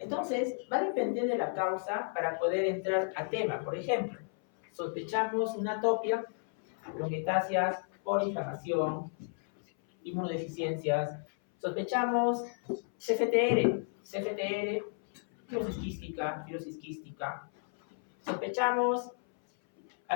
va a depender de la causa para poder entrar al tema. Por ejemplo, sospechamos una atopia, bronquiectasias por inflamación, inmunodeficiencias. Sospechamos CFTR, fibrosis quística. Sospechamos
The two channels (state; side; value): silent; right; 56 dB below the other